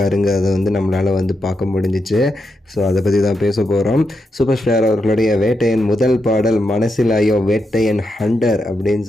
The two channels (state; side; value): normal; both; correlation 0.85